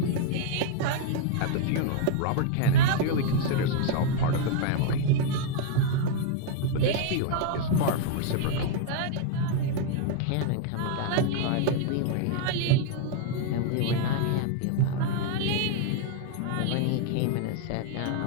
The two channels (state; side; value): different; both; correlation 0.00